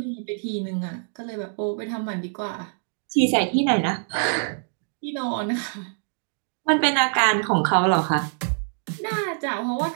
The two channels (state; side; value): silent; left; digital silence